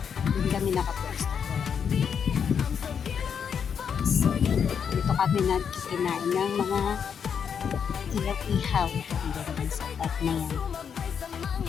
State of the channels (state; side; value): quieter; right; 7.3 dB